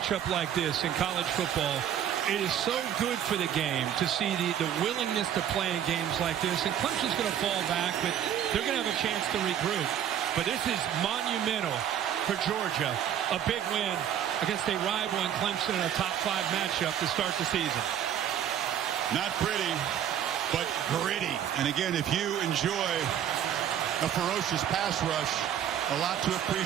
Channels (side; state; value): left; quieter; 9.9 dB